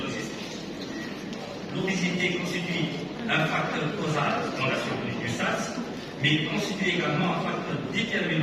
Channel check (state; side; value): identical; both; correlation 1.00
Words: L'obésité constitue un facteur causal dans la survenue du SARS, mais il constitue également un facteur